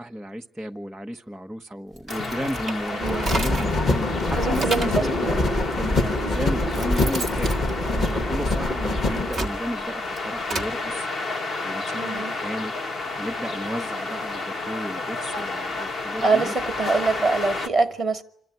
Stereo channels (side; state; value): both; normal; correlation 0.77